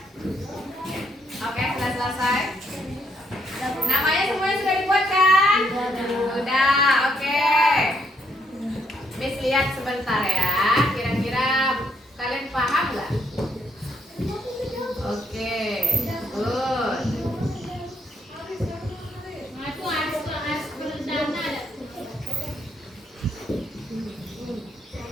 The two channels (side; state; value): both; normal; correlation 0.73